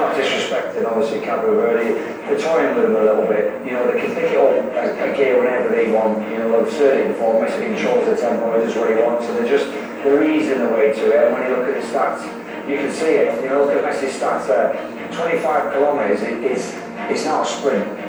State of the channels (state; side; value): identical; both; correlation 1.00